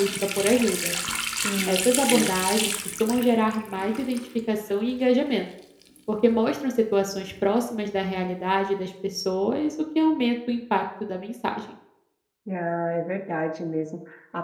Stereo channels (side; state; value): both; identical; correlation 1.00